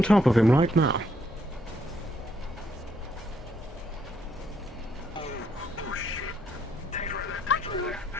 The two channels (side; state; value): both; normal; correlation 0.72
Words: top of him right now.